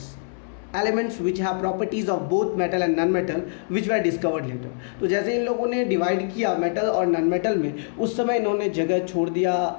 elements which have properties of both metal and non metal which were discovered later. तो जैसे इन लोगों ने divide किया metal और non metal में, उस समय इन्होंने जगह छोड़ दिया,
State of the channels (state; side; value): silent; right; 63 dB below the other